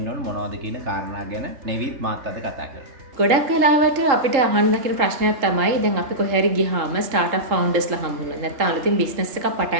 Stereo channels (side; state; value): left; late; 3.8 ms